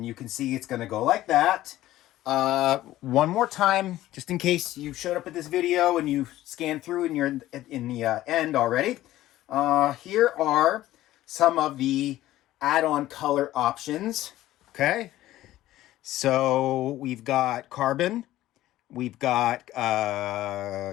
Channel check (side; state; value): right; quieter; 15.0 dB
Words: you can see it's going to go like that. One more time, just in case you showed up at this video and you scanned through and you're in the end already. Here are some of the add-on color options. Okay, so we've got carbon, we've got